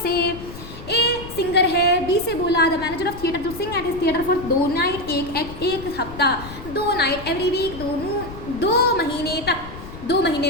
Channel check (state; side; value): noise; left; rumble, 13 dB below the sound